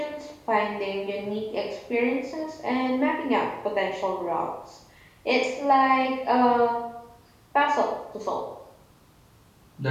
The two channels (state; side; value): identical; both; correlation 1.00